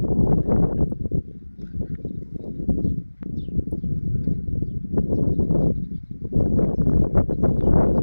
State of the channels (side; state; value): both; inverted; correlation -1.00